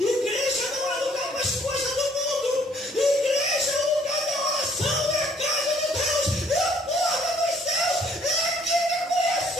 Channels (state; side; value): normal; both; correlation 0.62